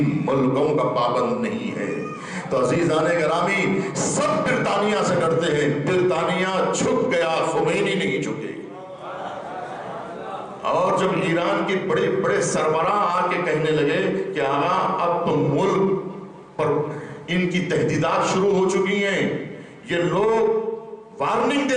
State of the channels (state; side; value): identical; both; correlation 1.00